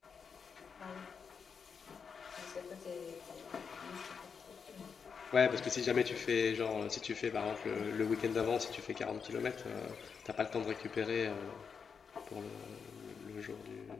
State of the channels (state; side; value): quieter; right; 6.1 dB